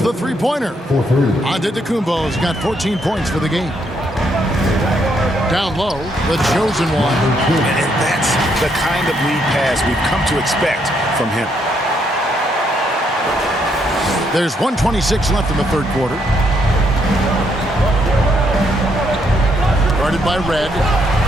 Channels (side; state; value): both; normal; correlation 0.74